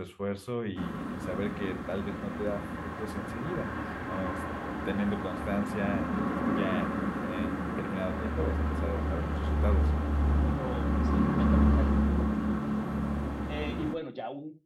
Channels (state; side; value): identical; both; correlation 1.00